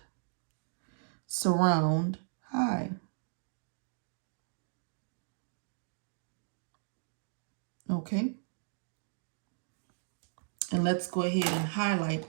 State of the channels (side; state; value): left; silent; digital silence